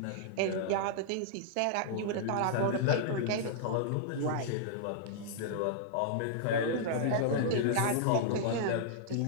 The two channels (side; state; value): both; different; correlation -0.01